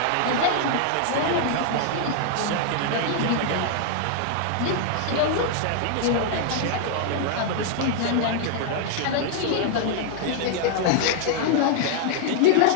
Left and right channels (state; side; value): different; both; correlation -0.01